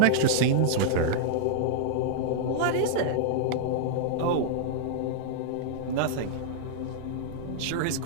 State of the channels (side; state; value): both; different; correlation -0.01